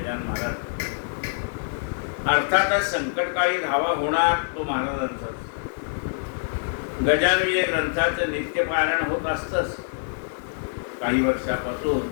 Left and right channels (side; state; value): right; silent; digital silence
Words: महाराज. अर्थातच संकटकाळी धावा होणार तो महाराजांचाच. गजानन ग्रंथाचं नित्यपारायण होत असतंच काही वर्षापासून.